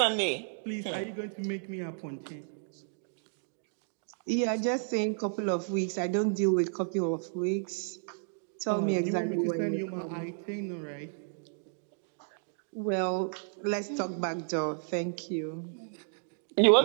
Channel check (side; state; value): left; silent; digital silence